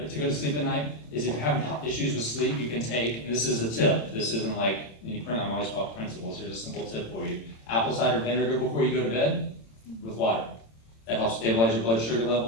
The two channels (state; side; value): late; right; 26 ms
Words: go to sleep at night, is if you're having issues with sleep, you can take, and this is a tip, this isn't like any print, I'm always about principles, here's a simple tip for you. Apple cider vinegar before you go to bed with water. That helps stabilize your blood sugar